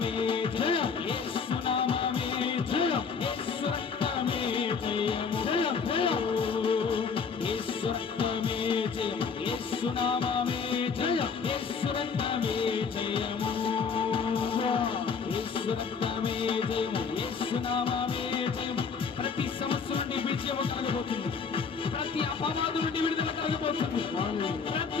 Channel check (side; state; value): right; quieter; 5.7 dB